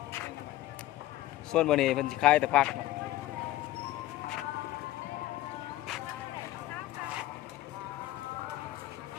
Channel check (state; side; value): quieter; right; 15.5 dB